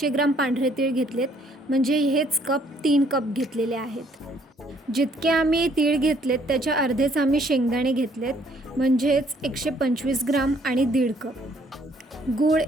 ग्राम पांढरे तीळ घेतलेत, म्हणजे हेच कप 3 कप घेतलेले आहेत. जितके आम्ही तीळ घेतलेत त्याच्या अर्धेच आम्ही शेंगदाणे घेतलेत, म्हणजेच 125 ग्राम आणि 1.5 कप. गूळ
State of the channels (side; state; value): both; normal; correlation 0.64